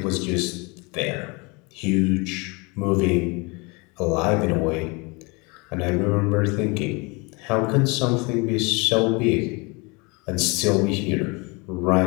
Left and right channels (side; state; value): right; quieter; 28.2 dB